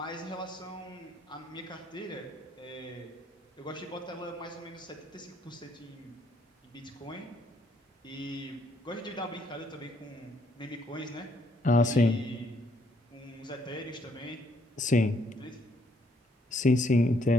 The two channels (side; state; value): both; normal; correlation 0.69